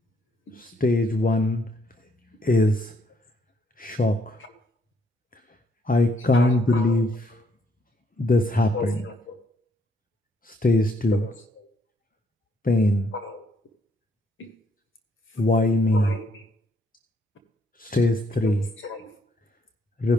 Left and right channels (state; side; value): normal; both; correlation 0.71